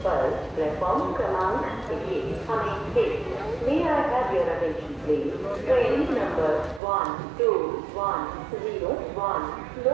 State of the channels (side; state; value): left; drops out; at 6.8 s